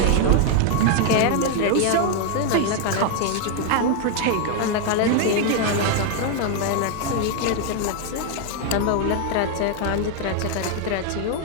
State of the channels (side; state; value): both; different; correlation 0.00